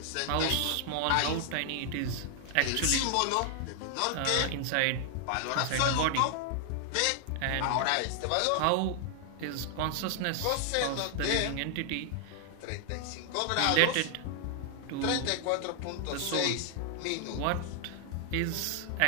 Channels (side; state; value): both; different; correlation 0.00